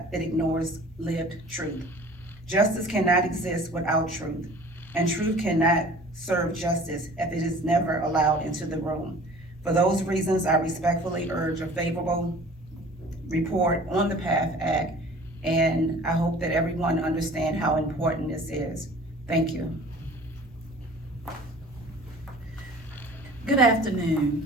that ignores lived truth. Justice cannot exist without truth, and truth cannot serve justice if it is never allowed into the room. For those reasons, I respectfully urge a favorable report on the PATH Act, and I hope that everyone understands how important this is. Thank you. Good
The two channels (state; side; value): normal; both; correlation 0.46